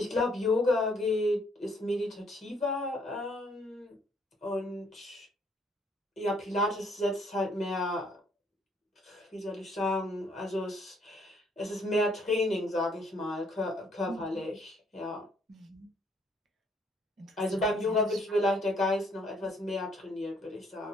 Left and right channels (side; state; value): both; normal; correlation 0.66